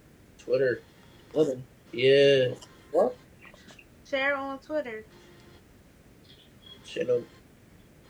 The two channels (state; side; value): identical; both; correlation 1.00